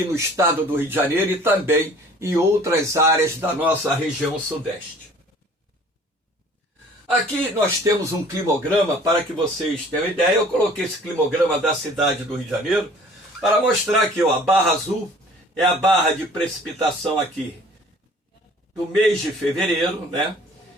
no estado do Rio de Janeiro e também em outras áreas da nossa região sudeste. Aqui nós temos um climograma para que vocês tenham ideia. Eu coloquei esse climograma da cidade do Rio de Janeiro para mostrar que a barra azul é a barra de precipitação aqui do mês de fevereiro, né?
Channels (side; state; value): both; normal; correlation 0.51